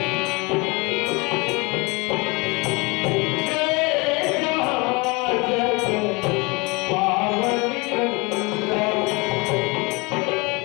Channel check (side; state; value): right; quieter; 26.5 dB